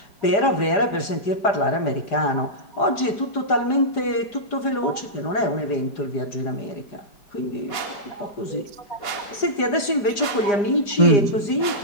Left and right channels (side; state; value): right; late; 4.9 ms